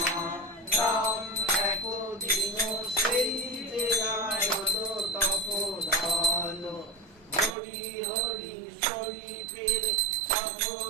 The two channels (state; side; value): drops out; left; at 7.6 s